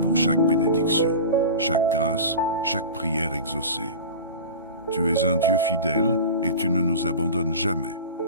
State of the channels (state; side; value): inverted; both; correlation -0.33